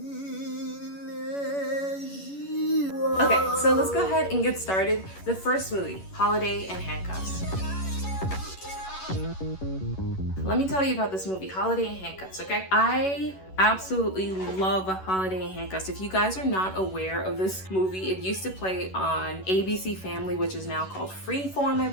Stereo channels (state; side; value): late; right; 11 ms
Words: Okay, so let's go ahead and get started. The first movie, Holiday and Handcuffs. Let me tell you about this movie, Holiday and Handcuffs, okay? I absolutely love Holiday and Handcuffs. If you guys are not aware of this movie, it used to play on ABC Family, which is now called Freeform, I